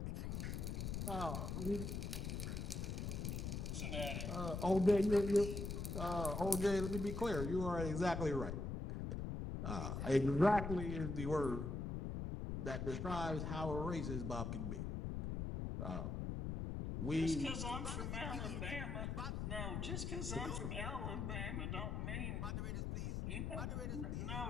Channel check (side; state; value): left; noise; rumble, 2 dB below the sound